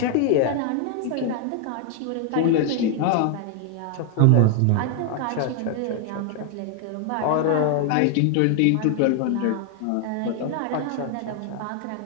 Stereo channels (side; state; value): both; different; correlation 0.00